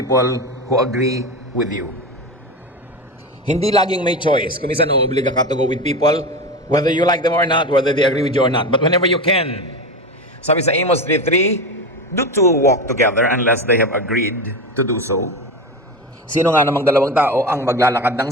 who agree with you. Hindi laging may choice. Kung minsan uobliga ka to go with people, whether you like them or not, whether they agree with you or not. But whenever you can, sabi sa Amos 3:3, do two walk together unless they have agreed to do so. Sino nga namang dalawang tao ang maglalakad ng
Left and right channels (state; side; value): normal; both; correlation 0.22